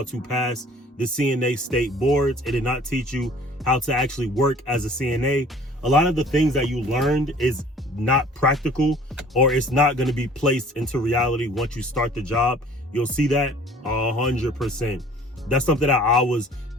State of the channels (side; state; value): both; normal; correlation 0.51